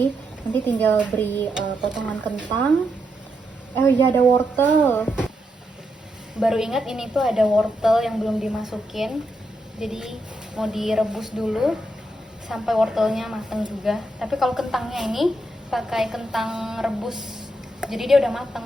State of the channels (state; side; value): normal; both; correlation 0.82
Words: nanti tinggal beri potongan kentang. Oh iya, ada wortel. Baru ingat ini tuh ada wortel yang belum dimasukin. Jadi mau direbus dulu sampai wortelnya matang juga. Tapi kalau kentangnya ini pakai kentang rebus, jadi dia udah